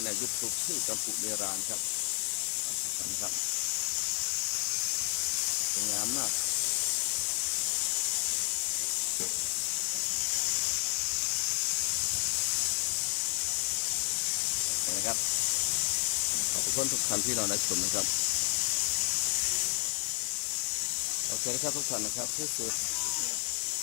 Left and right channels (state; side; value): quieter; right; 36.7 dB